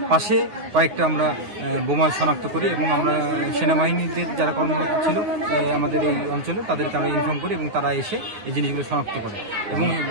পাশে কয়েকটা আমরা বোমা শনাক্ত করি এবং আমরা সেনাবাহিনীদের যারা কর্মরত ছিল আমাদের এই অঞ্চলে তাদেরকে আমরা ইনফর্ম করি এবং তারা এসে এই জিনিসগুলো শনাক্ত করে এবং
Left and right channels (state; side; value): late; left; 9.8 ms